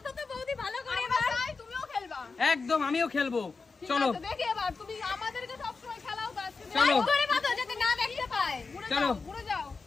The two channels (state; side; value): quieter; right; 4.4 dB